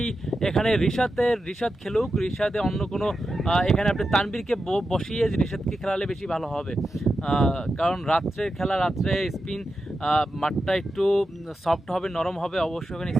এখানে রিশাদ খেলুক। রিশাদে অন্য কোনো এখানে আপনি তানবীরকে বসিয়ে রিশাদকে খেলালে বেশি ভালো হবে, কারণ রাত্রের খেলা, রাত্রে স্পিন মাঠটা একটু সফট হবে, নরম হবে, অবশ্যই ওখানে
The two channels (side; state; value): both; normal; correlation 0.90